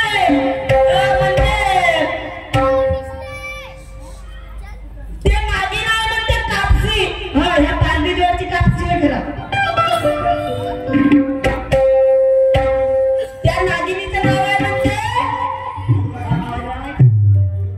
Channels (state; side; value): identical; both; correlation 1.00